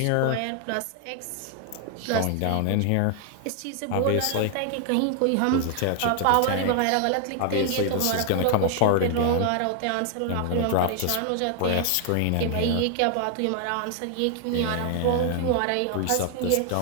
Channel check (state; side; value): different; both; correlation 0.00